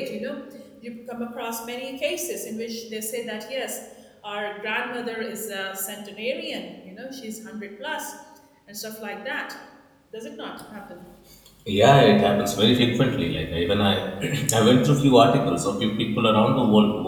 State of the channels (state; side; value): identical; both; correlation 1.00